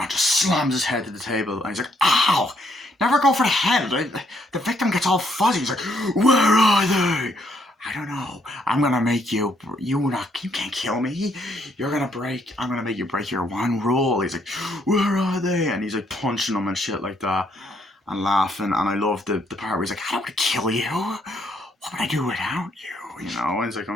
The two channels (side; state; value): both; normal; correlation 0.71